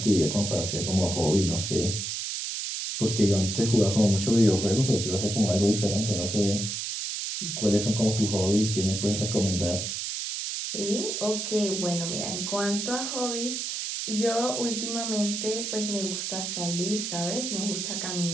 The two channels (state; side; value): noise; right; hiss, 3 dB below the sound